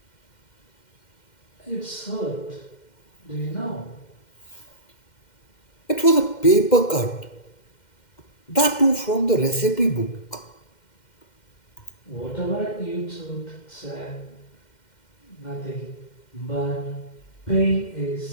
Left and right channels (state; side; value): late; right; 2.1 ms